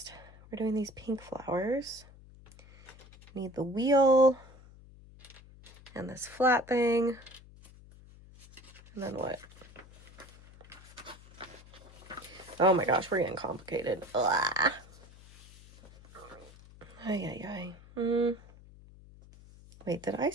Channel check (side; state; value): left; noise; hum, 21 dB below the sound